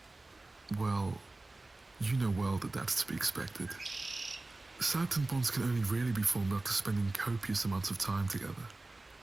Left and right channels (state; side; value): quieter; left; 3.1 dB